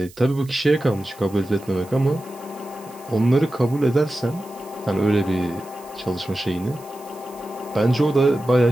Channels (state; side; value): noise; right; hiss, 23 dB below the sound